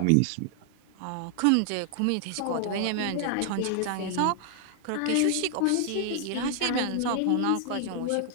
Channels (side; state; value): both; different; correlation 0.00